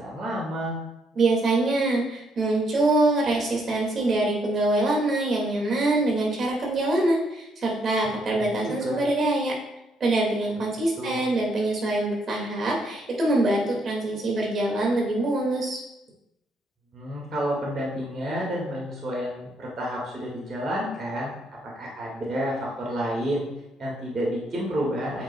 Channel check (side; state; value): both; normal; correlation 0.73